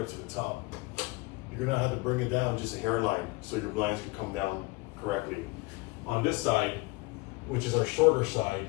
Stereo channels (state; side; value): quieter; right; 24.0 dB